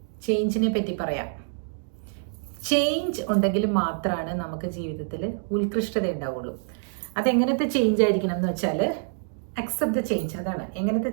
ചേഞ്ചിനെ പറ്റി പറയാം. ചേഞ്ച് ഉണ്ടെങ്കിൽ മാത്രമാണ് നമുക്ക് ജീവിതത്തിൽ ഉത്കൃഷ്ടത ഉണ്ടാവുള്ളൂ. അതെങ്ങനത്തെ ചേഞ്ച് ആയിരിക്കണം എന്ന് വെച്ചാൽ അക്സെപ്റ്റ് ദ ചേഞ്ച്. അതാണ് എങ്ങനത്തെ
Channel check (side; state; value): left; silent; digital silence